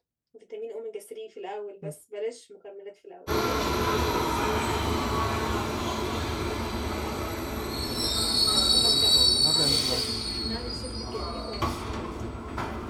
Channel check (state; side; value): identical; both; correlation 1.00